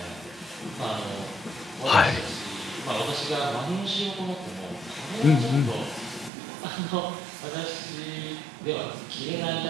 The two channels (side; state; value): left; drops out; at 6.3 s